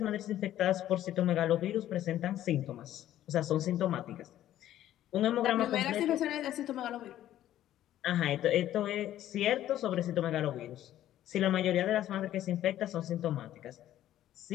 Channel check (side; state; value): right; quieter; 12.6 dB